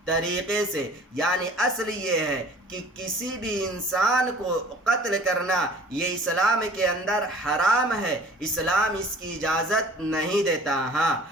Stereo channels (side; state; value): both; normal; correlation 0.48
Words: طریقے سے۔ یعنی اصل یہ ہے کہ کسی بھی انسان کو قتل کرنا یہ اسلام کے اندر حرام ہے، اسلام اس کی اجازت نہیں دیتا۔ ہاں